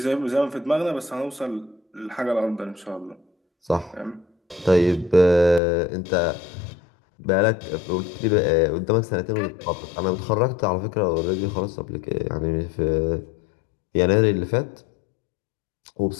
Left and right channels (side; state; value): right; drops out; at 5.6 s